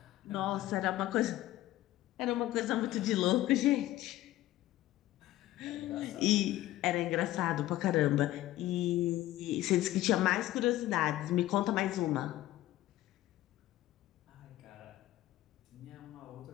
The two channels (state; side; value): quieter; right; 15.2 dB